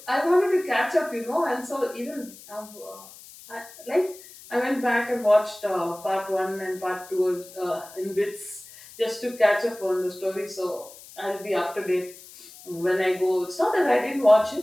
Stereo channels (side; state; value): left; noise; hiss, 19 dB below the sound